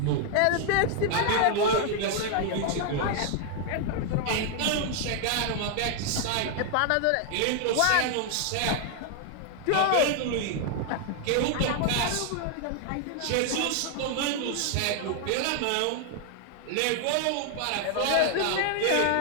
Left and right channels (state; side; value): different; both; correlation 0.00